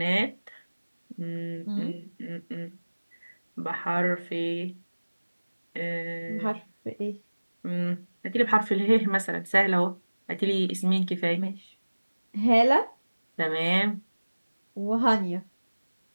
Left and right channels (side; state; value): both; inverted; correlation -1.00